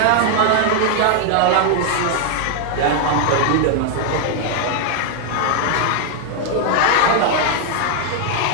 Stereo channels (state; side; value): different; both; correlation 0.00